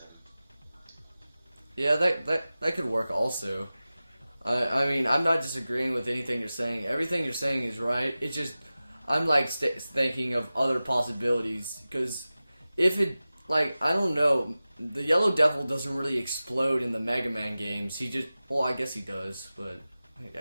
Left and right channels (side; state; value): both; inverted; correlation -0.96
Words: Yeah, that could work also. I mean, I'm not disagreeing with anything you're saying. Everything you're saying is right. It's just, I'm like thinking of other possibilities. Because if it, like, I don't know, the Yellow Devil doesn't really explode in the Mega Man games. He just, well, I guess he does, but